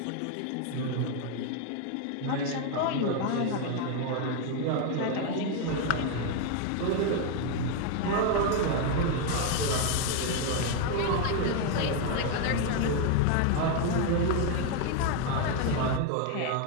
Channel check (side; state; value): both; different; correlation 0.01